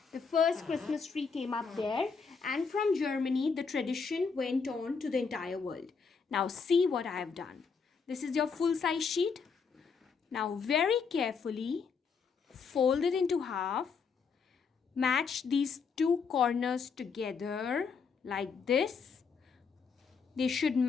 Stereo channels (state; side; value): quieter; right; 5.5 dB